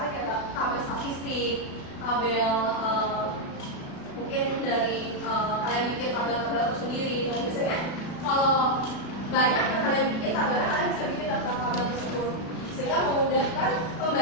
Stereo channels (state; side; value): late; right; 36 ms